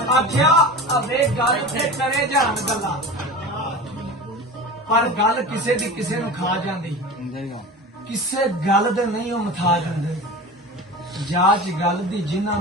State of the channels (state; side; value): normal; both; correlation 0.32